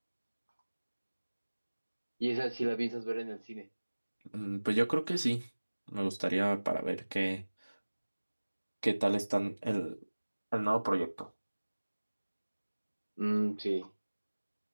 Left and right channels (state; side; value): inverted; both; correlation -1.00